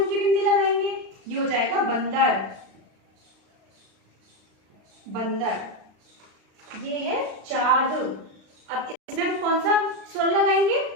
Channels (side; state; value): left; late; 36 ms